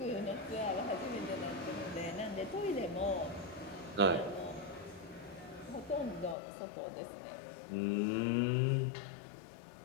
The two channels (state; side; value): drops out; right; at 6.4 s